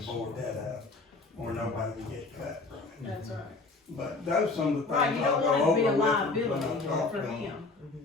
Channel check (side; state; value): right; quieter; 3.6 dB